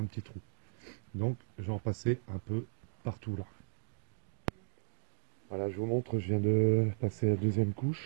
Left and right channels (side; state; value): left; silent; digital silence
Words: petit trou. Donc, je vais en passer un peu partout là. Voilà, je vous montre, je viens de passer la deuxième